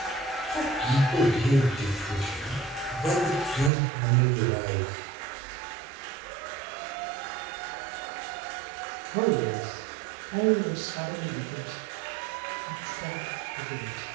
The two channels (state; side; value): drops out; left; at 3.7 s